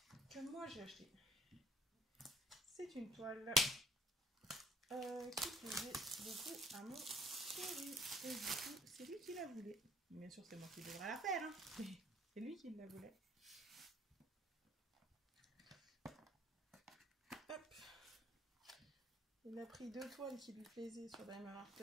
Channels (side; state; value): both; normal; correlation 0.58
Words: que moi j'ai achetée. C'est une toile qui plaisait beaucoup à mon chéri. Et du coup, c'est lui qui la voulait. Bien sûr, c'est moi qui devrais la faire, hein. C'est lui qui la voulait. Hop. Il a pris deux toiles qui lui plaisaient sur Diamond Art